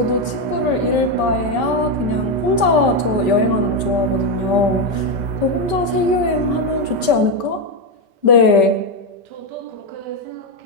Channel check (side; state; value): left; late; 5.2 ms